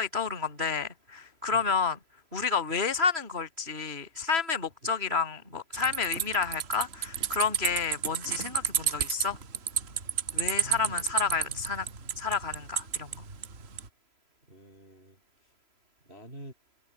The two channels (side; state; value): left; late; 3.0 ms